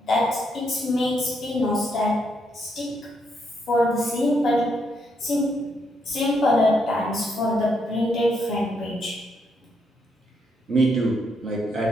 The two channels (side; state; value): both; normal; correlation 0.77